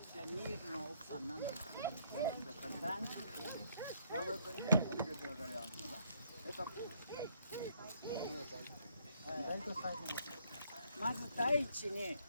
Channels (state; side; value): inverted; both; correlation -0.70